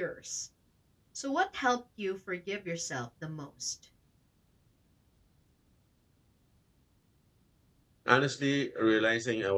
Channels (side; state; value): both; identical; correlation 1.00